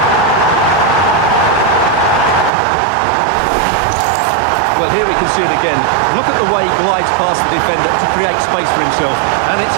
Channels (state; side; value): drops out; left; at 2.5 s